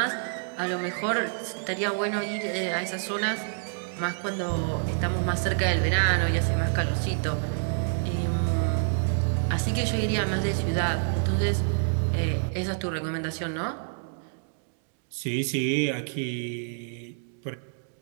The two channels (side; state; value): left; silent; digital silence